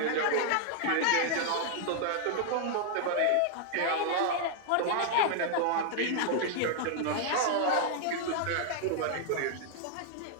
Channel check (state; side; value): different; both; correlation -0.01